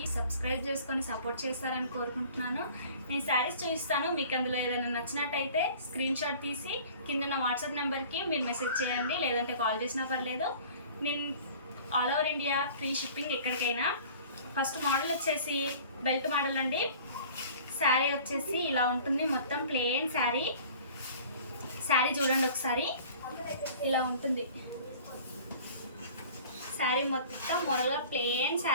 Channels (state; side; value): inverted; both; correlation -0.46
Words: సబ్స్క్రైబ్ చేసుకొని సపోర్ట్ చేస్తారని కోరుకుంటున్నాను. నేను శారీస్ చూపిస్తాను. మీకు అందులో ఏదైనా నచ్చినట్టయితే స్క్రీన్ షాట్ తీసి కింద ఉన్న వాట్సాప్ నెంబర్కి మీరు మెసేజ్ చేయండి, లేదంటే కాల్ చేసినా పర్లేదు. నేను all over India free shipping ఎక్కడికైనా. ఫస్ట్ మోడల్ వచ్చేసి బెల్ట్ మోడల్ అండి. శారీ వచ్చేసి ఇలా ఉంటుంది, మొత్తం ప్లెయిన్ శారీ. శారీ చూడండి ఒకసారి, ఇలా ఉంటుంది. శారీ మొత్తం మోడల్గా ప్లెయిన్